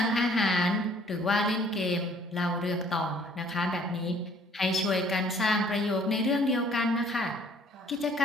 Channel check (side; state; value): both; normal; correlation 0.59